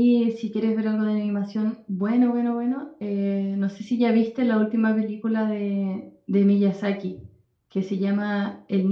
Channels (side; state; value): both; identical; correlation 1.00